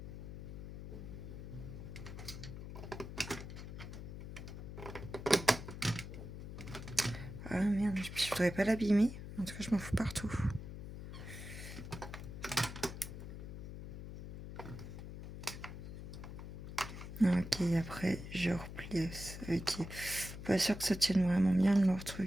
Ah merde, je voudrais pas l'abîmer. En tout cas, je m'en fous partout. Ok, après, je replie. Ok. Pas sûr que ça tienne vraiment bien leur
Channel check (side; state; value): left; noise; hum, 9 dB below the sound